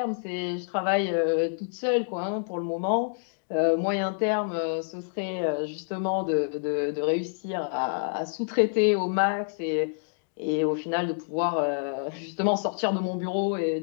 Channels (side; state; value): right; silent; digital silence